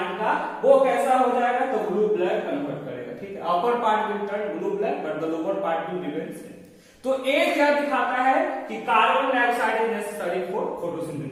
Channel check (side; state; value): both; identical; correlation 1.00